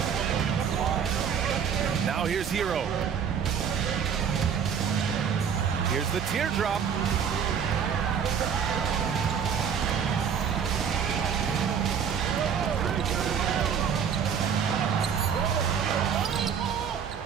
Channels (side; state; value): left; quieter; 7.4 dB